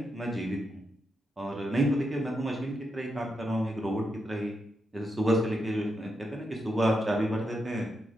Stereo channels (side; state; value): both; normal; correlation 0.84